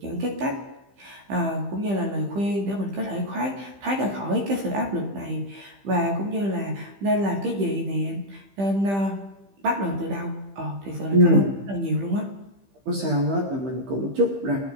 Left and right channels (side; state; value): left; late; 15 ms